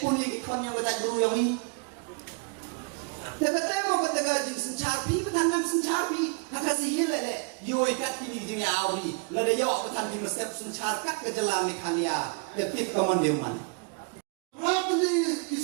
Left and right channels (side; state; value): left; quieter; 35.7 dB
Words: ini kau yang berjaya guru yang ini. Tetapi mau katakan jing sencapi, petandang sencapi, haka sihir le. Yo ikat pilih jing awri, lada yo petang di mesep sencarkat ke jalan mekalia, letik kaman dewan. Hati